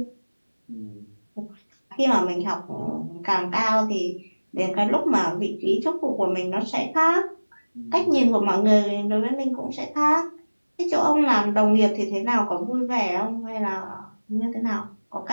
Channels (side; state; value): both; inverted; correlation -1.00